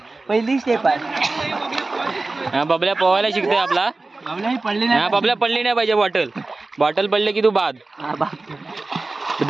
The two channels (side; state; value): left; quieter; 3.3 dB